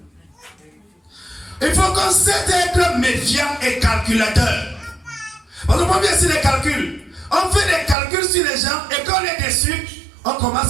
Il faut qu'on sait être méfiant et calculateur. Parce qu'on vient sur les calculs. On fait des calculs sur les gens et quand on est déçu, on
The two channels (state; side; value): drops out; left; at 8.0 s